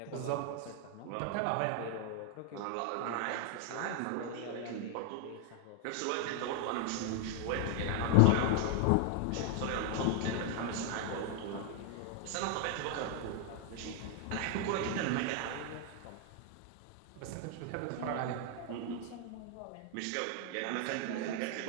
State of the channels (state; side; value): different; both; correlation 0.00